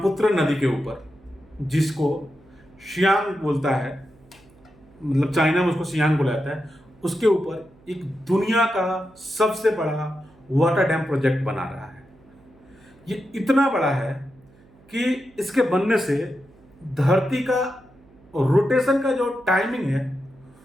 नदी के ऊपर, जिसको सियांग बोलता है, मतलब चाइना में उसको सियांग बोला जाता है, उसके ऊपर एक दुनिया का सबसे बड़ा वाटर डैम प्रोजेक्ट बना रहा है। ये इतना बड़ा है कि इसके बनने से धरती का रोटेशन का जो टाइमिंग है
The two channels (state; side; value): noise; right; hum, 28 dB below the sound